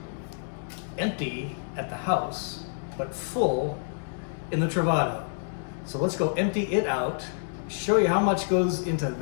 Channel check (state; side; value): silent; right; 59 dB below the other